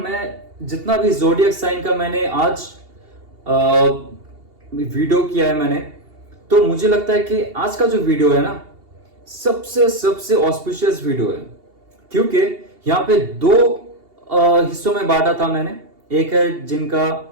में जितना भी जोडियक साइन का मैंने आज वीडियो किया है मैंने, तो मुझे लगता है कि आज का जो वीडियो है ना, सबसे ऑस्पिशियस वीडियो है, क्योंकि यहाँ पे दो हिस्सों में बांटा था मैंने। एक है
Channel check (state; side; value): late; left; 2.8 ms